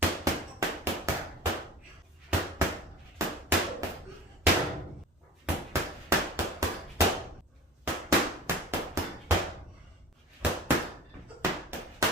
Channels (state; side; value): normal; both; correlation 0.37